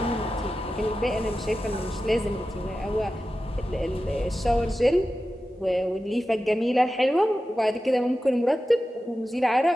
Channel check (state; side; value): normal; both; correlation 0.93